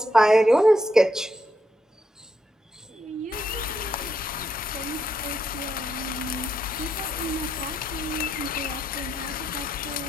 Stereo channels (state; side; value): normal; both; correlation 0.79